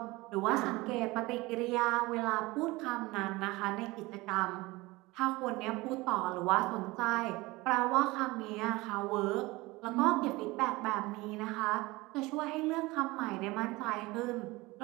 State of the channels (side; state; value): left; quieter; 21.6 dB